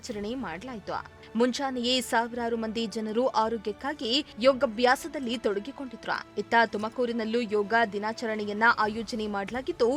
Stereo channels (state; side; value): identical; both; correlation 1.00